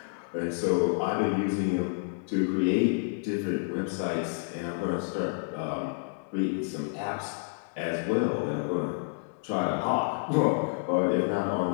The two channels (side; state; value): right; silent; 58 dB below the other